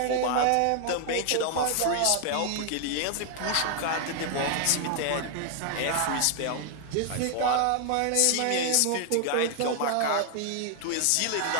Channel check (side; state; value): both; different; correlation 0.00